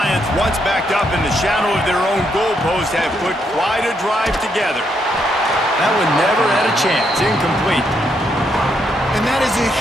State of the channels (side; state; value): both; normal; correlation 0.77